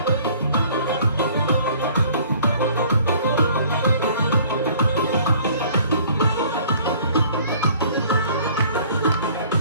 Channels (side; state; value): both; inverted; correlation -0.55